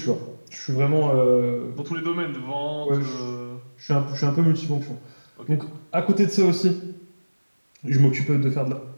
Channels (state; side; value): inverted; both; correlation -1.00